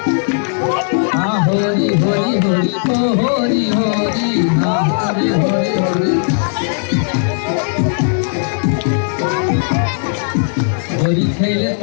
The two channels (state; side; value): silent; right; digital silence